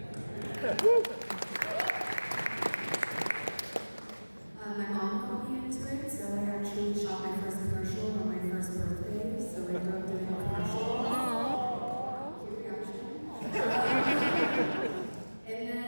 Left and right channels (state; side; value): inverted; both; correlation -1.00